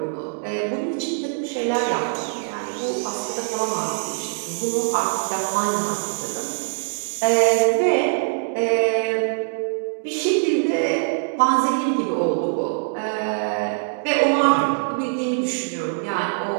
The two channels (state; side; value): silent; left; digital silence